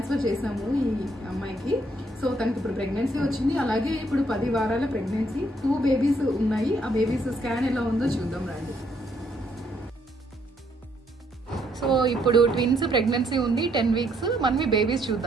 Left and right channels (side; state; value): both; normal; correlation 0.71